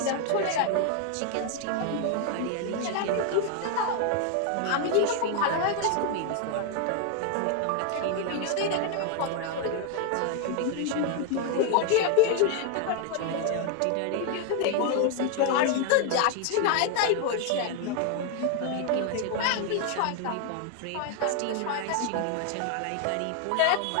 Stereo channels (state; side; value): different; both; correlation 0.01